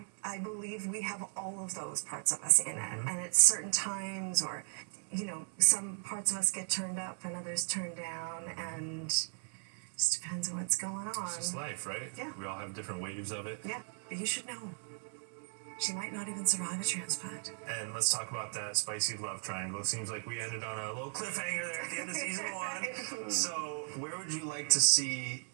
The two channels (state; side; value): silent; left; 53 dB below the other